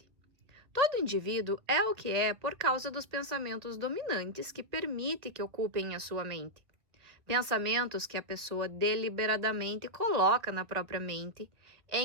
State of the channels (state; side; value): late; left; 2.2 ms